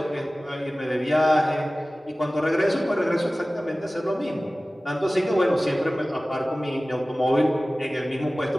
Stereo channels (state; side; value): normal; both; correlation 0.97